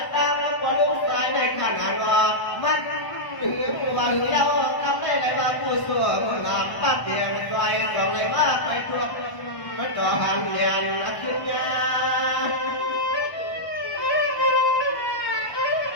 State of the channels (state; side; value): late; right; 1.0 ms